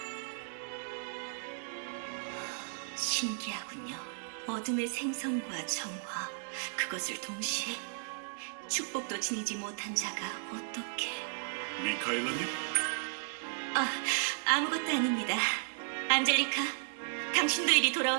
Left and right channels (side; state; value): left; silent; digital silence